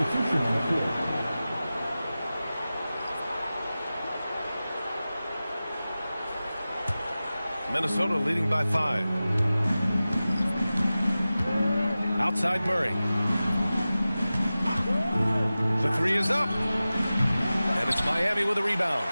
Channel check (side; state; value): both; inverted; correlation -0.96